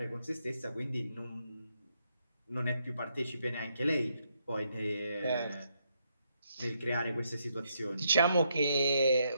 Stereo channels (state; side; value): inverted; both; correlation -0.77